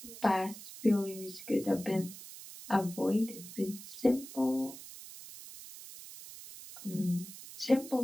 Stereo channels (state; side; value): noise; right; hiss, 14 dB below the sound